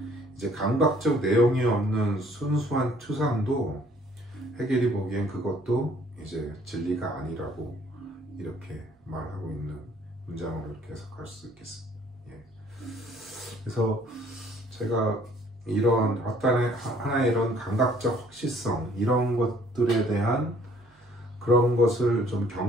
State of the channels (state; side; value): normal; both; correlation 0.59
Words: 이제 감각적 내용이 없는 순수한 추상도 해결이 보기엔 그것도 이제 진리가 아니라고 이렇게 말하고 있는 문장으로 이렇게 해석할 수 있겠습니다. 예. 그래서 제가 이런 하나의 이런 감각적 확실성, 이런 것들에 대한 그런 것을 좀